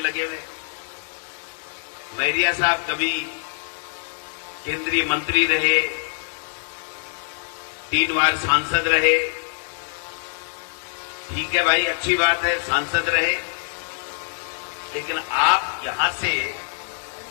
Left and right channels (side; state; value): right; silent; digital silence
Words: लगे हुए। मैरिया साहब कभी केंद्रीय मंत्री रहे, 3 बार सांसद रहे। ठीक है भाई, अच्छी बात है, सांसद रहे, लेकिन आप यहां से